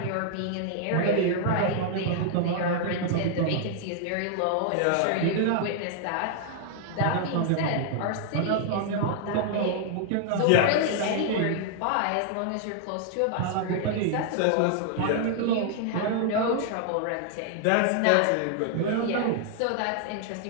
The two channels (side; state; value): both; different; correlation 0.00